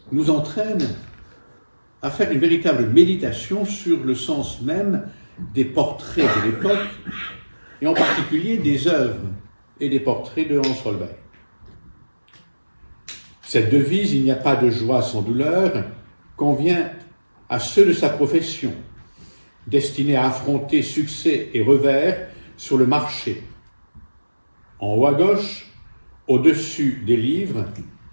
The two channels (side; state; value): both; inverted; correlation -1.00